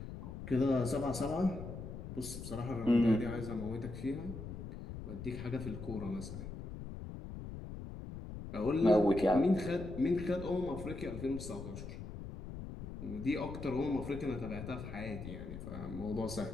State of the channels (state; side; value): noise; left; rumble, 9 dB below the sound